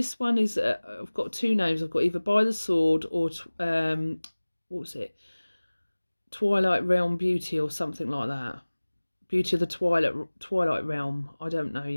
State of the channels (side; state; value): both; inverted; correlation -1.00